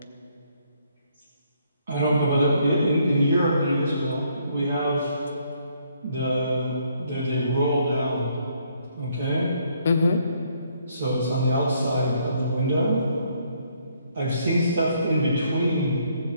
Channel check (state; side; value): inverted; both; correlation -0.69